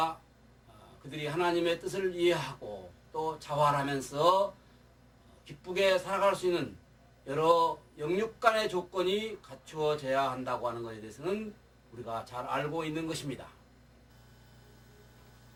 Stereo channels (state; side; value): identical; both; correlation 1.00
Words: 그들이 하나님의 뜻을 이해하고 또 자활하면서 기쁘게 살아갈 수 있는 여러 영육 간의 조건이 갖추어져야 한다고 하는 것에 대해서는 우리가 잘 알고 있는 것입니다.